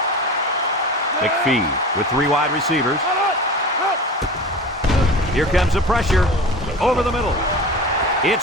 McPhee with 3 wide receivers. Here comes the pressure. Over the middle.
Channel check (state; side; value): normal; both; correlation 0.34